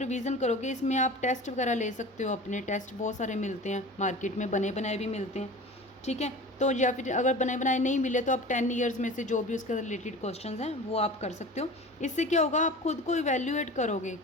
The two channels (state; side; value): normal; both; correlation 0.37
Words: करोगे, इसमें आप टेस्ट वगैरह ले सकते हो। अपने टेस्ट बहुत सारे मिलते हैं मार्केट में, बने बनाए भी मिलते हैं, ठीक है। तो या फिर अगर बने बनाए नहीं मिले तो आप 10 ईयर्स में से जो भी उसके रिलेटेड क्वेश्चंस हैं वो आप कर सकते हो। इससे क्या होगा, आप खुद को इवेल्यूएट करोगे